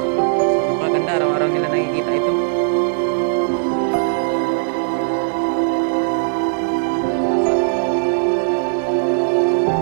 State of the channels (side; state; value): left; silent; 67 dB below the other